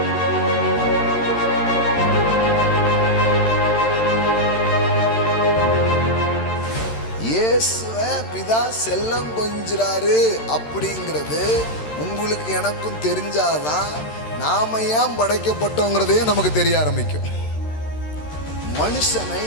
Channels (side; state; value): right; late; 13 ms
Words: இயேசுவை பிதா செல்லம் கொஞ்சிறாரு அப்படிங்கிறது உங்களுக்கு எனக்கும் தெரிஞ்சாதான் நாம ஏன் படைக்கப்பட்டோங்கிறதே நமக்கு தெரிய ஆரம்பிக்கும். மனுஷனை